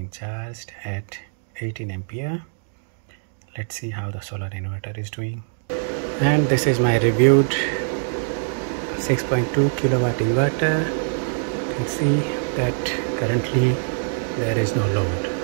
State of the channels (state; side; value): silent; left; digital silence